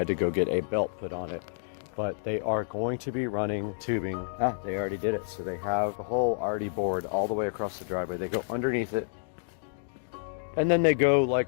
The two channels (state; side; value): silent; right; digital silence